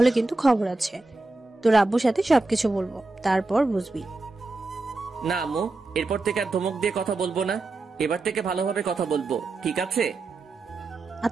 কিন্তু খবর আছে। তোর আব্বুর সাথে সবকিছু বলবো, তারপর বুঝবি। না আম্মু, এরপর থেকে আর ধমক দিয়ে কথা বলবো না। এবার থেকে ভালোভাবে কথা বলবো, ঠিক আছে?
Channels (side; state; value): left; quieter; 3.3 dB